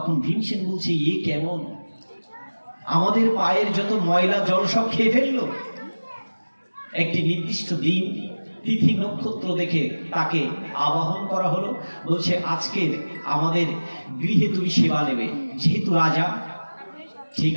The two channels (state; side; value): inverted; both; correlation -1.00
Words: ভীমসেন বলছে, এ কেমন? আমাদের পায়ের যত ময়লা জল সব খেয়ে ফেললো। একটি নির্দিষ্ট দিন তিথি নক্ষত্র দেখে তাকে আবাহন করা হলো। বলছে আজকের আমাদের গৃহে তুমি সেবা নেবে, যেহেতু রাজা। ঠিক